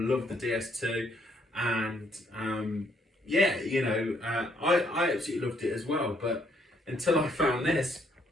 the DS2, and yeah, you know, I absolutely loved it as well, but until I found this,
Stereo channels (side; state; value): both; normal; correlation 0.69